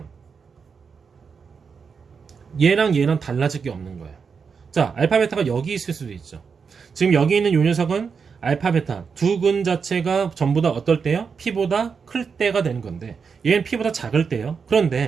얘랑 얘랑 달라질 게 없는 거예요. 자, 알파 베타가 여기 있을 수도 있죠. 지금 여기 있는 요 녀석은 알파 베타 두 근 자체가 전부 다 어떨 때요? p보다 클 때가 되는 건데 얘는 p보다 작을 때요.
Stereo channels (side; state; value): left; quieter; 5.8 dB